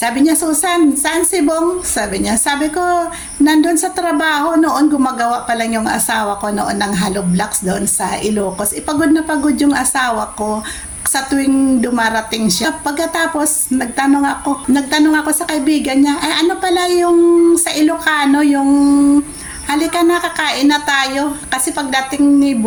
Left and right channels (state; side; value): identical; both; correlation 1.00